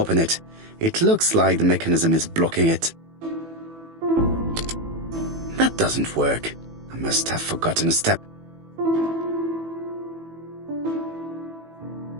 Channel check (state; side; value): late; left; 18 ms